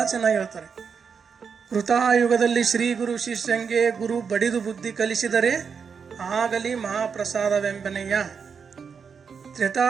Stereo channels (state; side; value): quieter; left; 6.1 dB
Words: ಚೆನ್ನಾಗಿ ಹೇಳ್ತಾರೆ. ಕೃತಾಯುಗದಲ್ಲಿ ಶ್ರೀ ಗುರು ಶಿಷ್ಯಂಗೆ ಗುರು ಬಡಿದು ಬುದ್ಧಿ ಕಲಿಸಿದರೆ ಆಗಲಿ ಮಹಾಪ್ರಸಾದವೆಂಬನೆಯ.